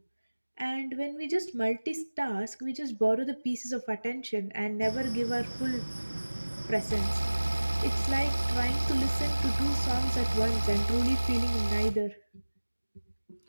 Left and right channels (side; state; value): both; inverted; correlation -1.00